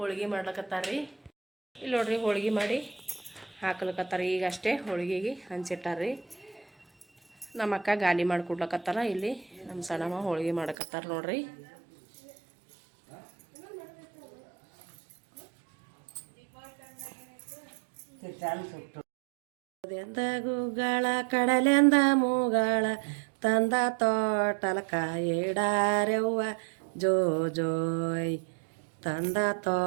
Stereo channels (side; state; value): left; drops out; at 10.8 s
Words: ಮಾಡ್ಲಕತ್ತಾರ್ರಿ. ಇಲ್ಲಿ ನೋಡ್ರಿ ಹೋಳಿಗೆ ಮಾಡಿ ಹಾಕ್ಲಕತ್ತಾರ. ಈಗ ಅಷ್ಟೇ ಹೋಳಿಗೆಗೆ ಹಂಚಿಟ್ಟಾರ್ರಿ. ನಮ್ಮ ಅಕ್ಕ ಗಾಲಿ ಮಾಡಿ ಕೊಡ್ಲಕತ್ತಾರ. ಇಲ್ಲಿ ನಮ್ಮ ಸಣ್ಣಮ್ಮ ಹೋಳಿಗೆ ಮಾಡಕತ್ತಾರ ನೋಡ್ರಿ. ಎಂದ ಗುಗ್ಗಳ ಕಡಲೆಂದ ಮೂಗಳ ತಂದ ತೋಟಲಕ ಇಡಾರೆವ್ವ ಜೋ ಜೋಯ್. ತಂದ